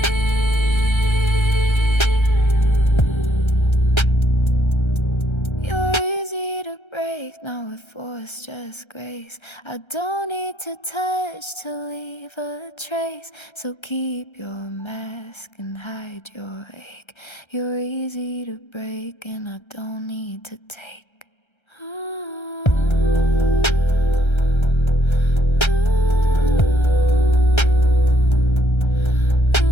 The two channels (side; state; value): right; late; 1.3 ms